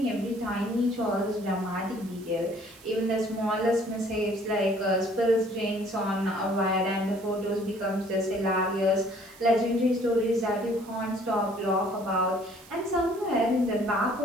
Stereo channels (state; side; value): noise; right; hiss, 23 dB below the sound